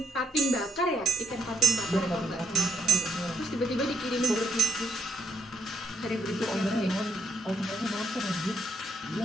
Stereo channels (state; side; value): normal; both; correlation 0.75